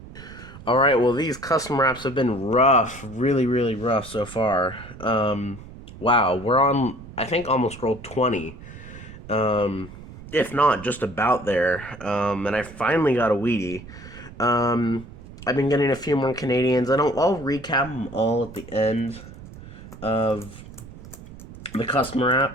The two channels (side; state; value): right; noise; rumble, 16 dB below the sound